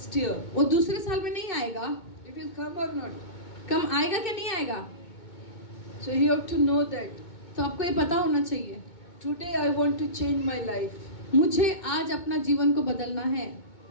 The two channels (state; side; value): late; right; 2.2 ms